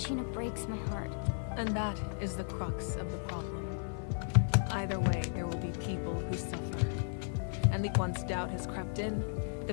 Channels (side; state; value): right; silent; 55 dB below the other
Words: breaks my heart. And that is the crux of the problem. Either way, there will be people who suffer. And once doubt has crept in,